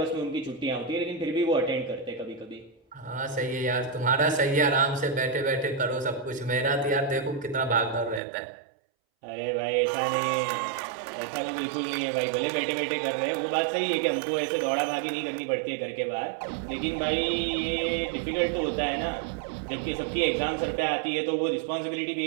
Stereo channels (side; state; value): left; drops out; at 8.2 s